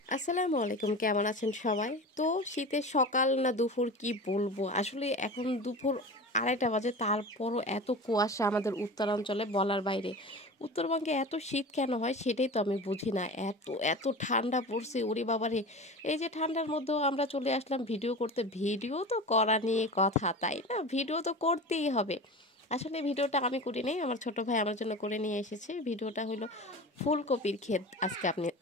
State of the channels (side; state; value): both; normal; correlation 0.32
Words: আসসালামু আলাইকুম, কেমন আছেন সবাই? তো শীতের সকাল না দুপুর কি বলবো, আসলে এখন দুপুর 2:30 বাজে, তারপরও এত কুয়াশা আমাদের উত্তরাঞ্চলে বলার বাইরে। উত্তরবঙ্গে এত শীত কেন হয় সেটাই তো আমি বুঝি না। এত এত ঠান্ডা পড়ছে, ওরে বাবারে। এই যে ঠান্ডার মধ্যেও আমরা চলে আসলাম ভিডিও করতে। ভিডিও তো করা নিয়ে কথা, তাই না? ভিডিও তো করতেই হবে। আসলে ভিডিওটা আমি করি নাই, আমার ছোট ভাই আমার জন্য করে নিয়ে এসেছে। ভিডিওটা হলো ফুলকপির ক্ষেত, আজকে